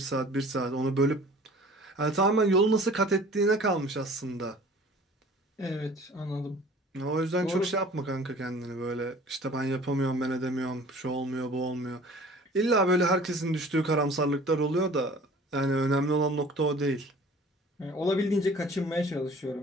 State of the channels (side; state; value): both; normal; correlation 0.48